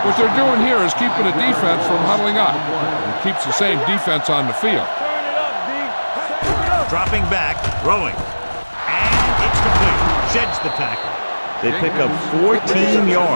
What they're doing here is keeping the defense from huddling up. It keeps the same defense on the field. Turn it up, D. Turn it up. Dropping back, throwing. And it's complete. Sheds the tackle. They pick up 14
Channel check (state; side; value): inverted; both; correlation -1.00